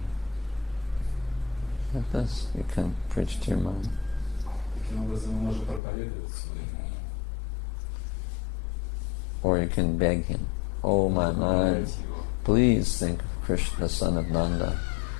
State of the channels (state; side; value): drops out; right; at 5.8 s